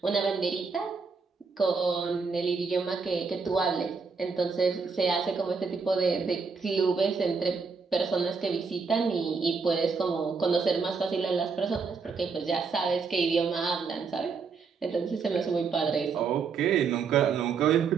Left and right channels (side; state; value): left; quieter; 5.1 dB